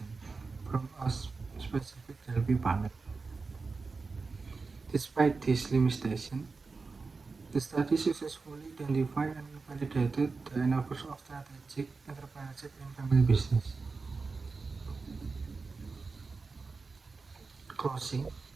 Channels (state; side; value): quieter; left; 4.3 dB